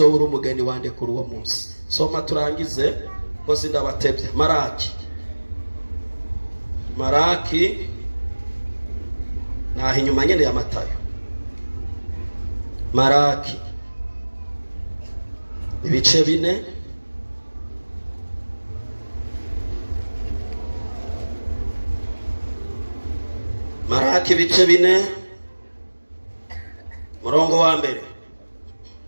umugeni wande kuri uwo munsi. Soma turangize ko sindabatebye. Maraki naho inyuma nyene ya Matayo. Maraki ibice 4 Maraki ibice 4 murongo wa mbere.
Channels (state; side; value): inverted; both; correlation -1.00